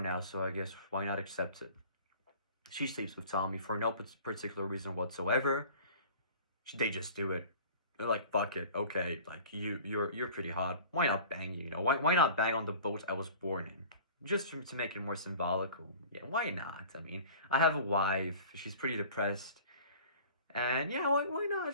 so I guess why not accept it? She sleeps with Tommy for no particular reason whatsoever. They just do it. They're like, fuck it, okay, like, you're pretty hot. Why not bang you, Why not bang on the boat I was born in? Just to make it more symbolical. Yeah, why not? I mean, I have a wife. She's pretty depressed. And yeah, why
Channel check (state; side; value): inverted; both; correlation -0.44